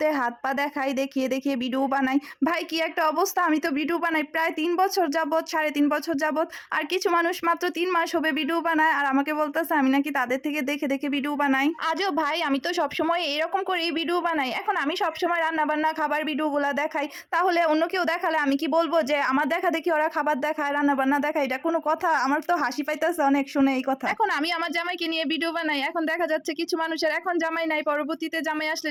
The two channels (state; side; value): identical; both; correlation 1.00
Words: হাত পা দেখাই, দেখিয়ে দেখিয়ে ভিডিও বানাই। ভাই কি একটা অবস্থা, আমি তো ভিডিও বানাই প্রায় 3 বছর যাবত, 3.5 বছর যাবত। আর কিছু মানুষ মাত্র 3 মাস হবে ভিডিও বানায়, আর আমাকে বলতেছে আমি নাকি তাদের থেকে দেখে দেখে ভিডিও বানাই। আজও ভাই আমি তো সবসময় এরকম করেই ভিডিও বানাই। এখন আমি সবসময় রান্না বান্না খাবার ভিডিওগুলো দেখাই, তাহলে অন্য কেউ দেখালে আমি কি বলবো যে আমার দেখা দেখি ওরা খাবার দেখায়, রান্না বান্না দেখায়? এটা কোনো কথা? আমার তো হাসি পাইতেছে অনেক শুনে এই কথা। এখন আমি আমার জামাইকে নিয়ে ভিডিও বানাই, এখন দেখা যাচ্ছে কিছু মানুষের এখন জামাই নাই, পরবর্তীতে জামাই আসলে